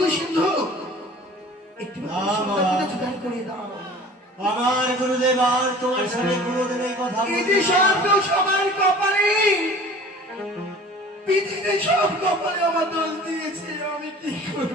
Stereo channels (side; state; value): both; normal; correlation 0.44